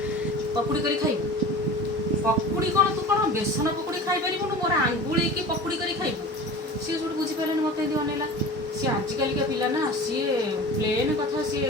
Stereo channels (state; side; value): normal; both; correlation 0.36